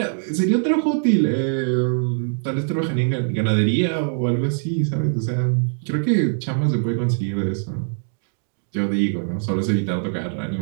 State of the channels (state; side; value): silent; left; digital silence